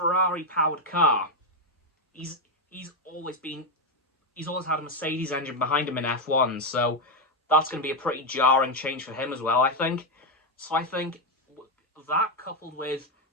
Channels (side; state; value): both; normal; correlation 0.06